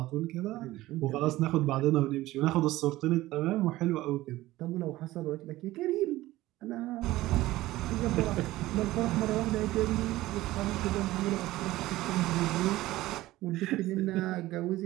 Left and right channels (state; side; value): quieter; left; 17.0 dB